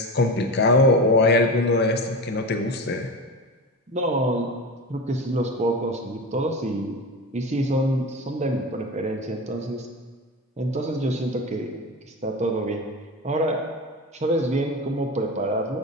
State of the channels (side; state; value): both; normal; correlation 0.26